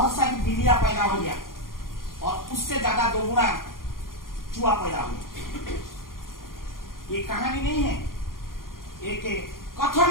सारी बिल्लियां पैदा हो गया और उससे ज्यादा 2 गुना चूहा पैदा हो गया। ये कहानी नहीं है, एक कथन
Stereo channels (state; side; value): late; right; 0.91 ms